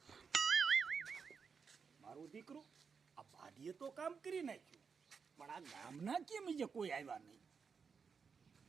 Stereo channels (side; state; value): left; quieter; 5.8 dB